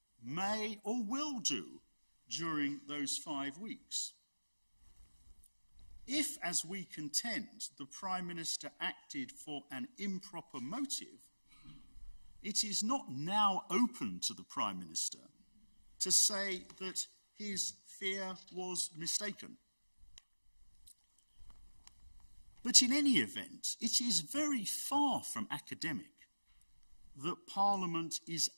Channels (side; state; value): both; inverted; correlation -1.00